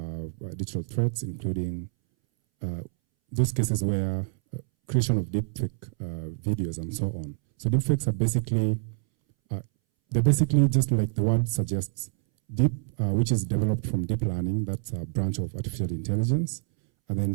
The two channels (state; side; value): silent; left; 60 dB below the other